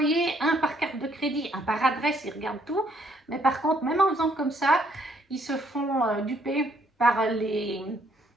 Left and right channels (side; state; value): both; normal; correlation 0.68